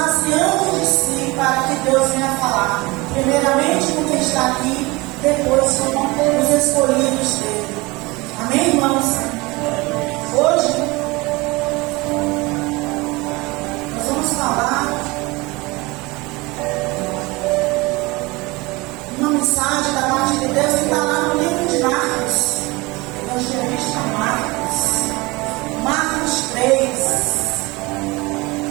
de si para que Deus venha falar. Primeiramente com quem está aqui, depois com os escolhidos dele. Amém, irmãos? Hoje nós vamos falar uma mensagem da parte de Deus que está lá no livro de Marcos. Evangelista Marcos 3.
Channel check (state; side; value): quieter; left; 23.5 dB